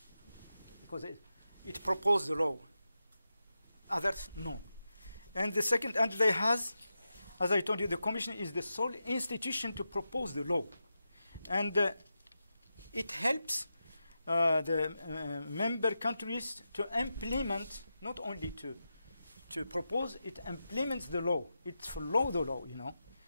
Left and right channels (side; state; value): both; inverted; correlation -0.90